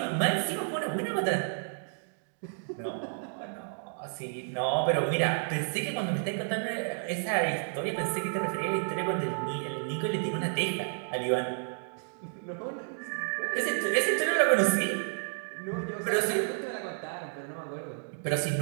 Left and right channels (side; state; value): left; silent; digital silence